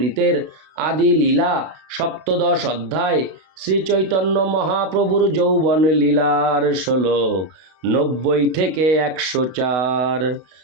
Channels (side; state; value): left; late; 32 ms